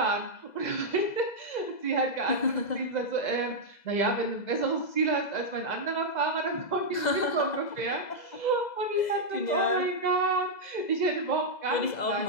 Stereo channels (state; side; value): late; right; 2.0 ms